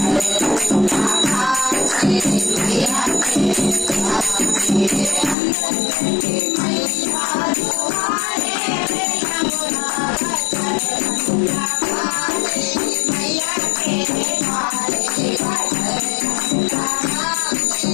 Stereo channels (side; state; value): right; drops out; at 5.4 s